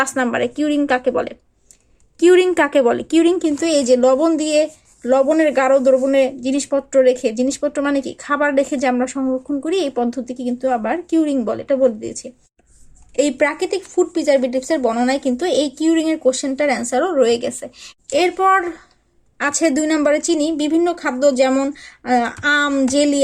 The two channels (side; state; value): both; identical; correlation 1.00